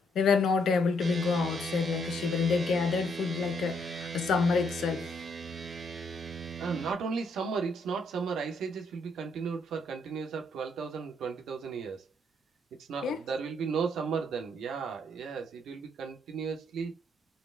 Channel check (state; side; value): normal; both; correlation 0.72